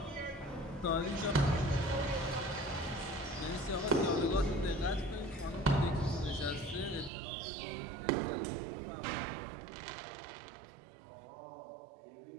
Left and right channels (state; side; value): drops out; left; at 7.1 s